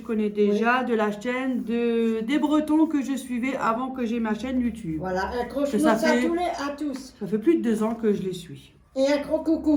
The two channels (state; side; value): identical; both; correlation 1.00